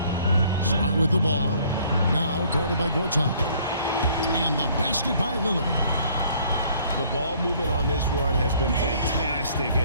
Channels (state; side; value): inverted; both; correlation -0.60